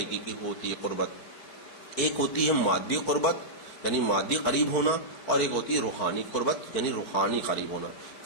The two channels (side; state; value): right; late; 4.5 ms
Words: کی ہوتی ہے قربت. ایک ہوتی ہے مادی قربت یعنی مادی قریب ہونا، اور ایک ہوتی ہے روحانی قربت یعنی روحانی قریب ہونا،